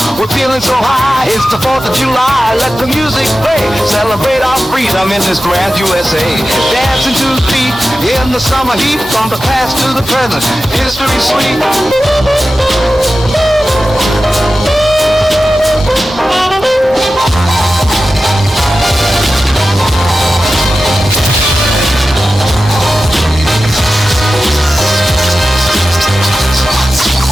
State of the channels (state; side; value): normal; both; correlation 0.93